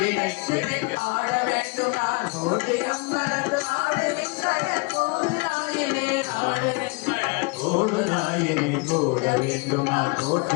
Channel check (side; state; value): right; quieter; 28.9 dB